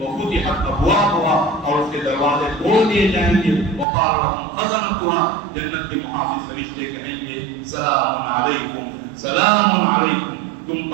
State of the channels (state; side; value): drops out; left; at 3.9 s